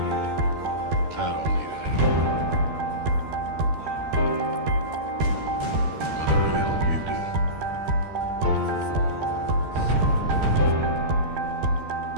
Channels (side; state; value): left; late; 13 ms